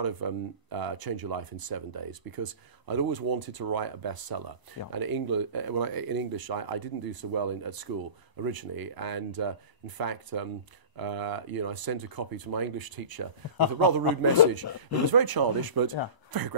of Change Your Life in 7 Days because I'd always wanted to write a bestseller. And in English, I didn't do so well at school originally, and in fact, I sent a copy to my English teacher with a rather rude message. It was very childish, but very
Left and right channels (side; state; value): left; late; 1.0 ms